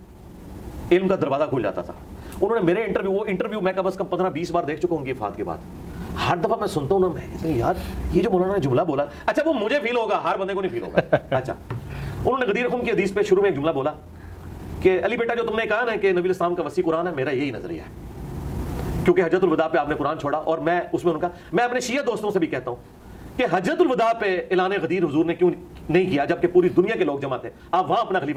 علم کا دروازہ کھل جاتا تھا۔ انہوں نے میرے انٹرویو میں کم از کم 15-20 بار دیکھ چکا ہوں گی وفات کے بعد، ہر دفعہ میں سنتا ہوں نا، میں کہتا ہوں یار یہ جو مولانا نے جملہ بولا، اچھا وہ مجھے فیل ہوگا، ہر بندے کو نہیں فیل ہوگا۔ اچھا، انہوں نے غدیر خم کی حدیث پہ شروع میں ایک جملہ بولا کہ علی بیٹا جو تم نے کہا نا کہ نبی علیہ السلام کا وسیع قرآن ہے، میرا یہی نظریہ ہے، کیونکہ حجۃ الوداع پہ آپ نے قرآن چھوڑا، اور میں اس میں ان کا، میں اپنے شیعہ دوستوں سے بھی کہتا ہوں کہ حجۃ الوداع پہ اعلان غدیر حضور نے کیوں نہیں کیا، جبکہ پوری دنیا کے لوگ جمع تھے، آپ وہاں اپنا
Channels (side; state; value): both; identical; correlation 1.00